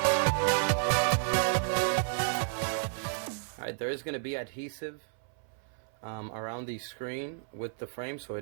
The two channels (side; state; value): left; silent; 57 dB below the other